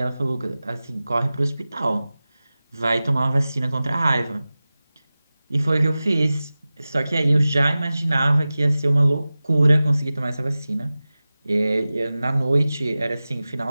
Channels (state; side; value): inverted; both; correlation -0.96